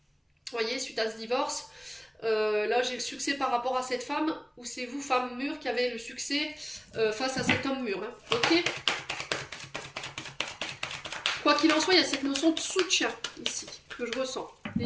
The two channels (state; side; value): identical; both; correlation 1.00